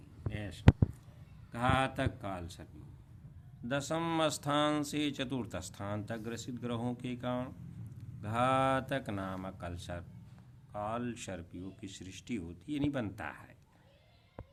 हैं। ऐसा घातक काल सर्प योग। 10वें स्थान से 4th स्थान तक ग्रसित ग्रहों के कारण घातक नामक काल सर्प योग की सृष्टि होती है, नहीं बनता है।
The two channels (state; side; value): identical; both; correlation 1.00